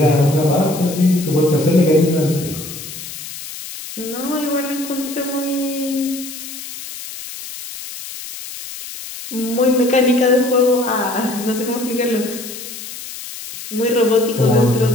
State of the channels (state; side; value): noise; left; hiss, 11 dB below the sound